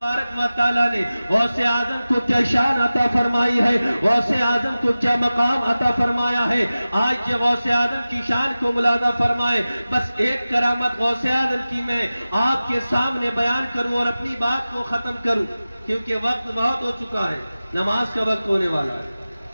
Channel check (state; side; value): inverted; both; correlation -0.96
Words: تبارک و تعالیٰ نے غوث اعظم کو کیا شان عطا فرمائی ہے، غوث اعظم کو کیا مقام عطا فرمایا ہے۔ آج یہ غوث اعظم کی شان کو ملاحظہ فرمائے۔ بس ایک کرامت غوث اعظم کی میں آپ کے سامنے بیان کروں اور اپنی بات کو ختم کروں، کیونکہ وقت بہت ہو چکا ہے، نماز کا وقت ہونے والا ہے۔